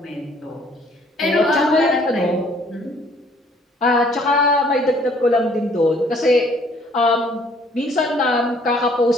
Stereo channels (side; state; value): both; normal; correlation 0.60